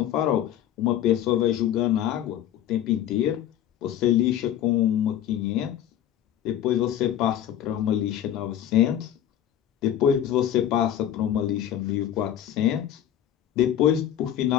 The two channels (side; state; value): right; quieter; 11.0 dB